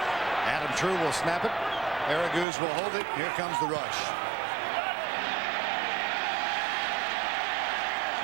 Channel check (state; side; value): drops out; left; at 2.5 s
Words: Adam True will snap it. Araguz will hold it. Here comes the rush.